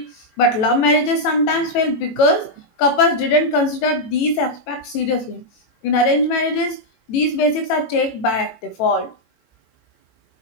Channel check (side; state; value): right; late; 18 ms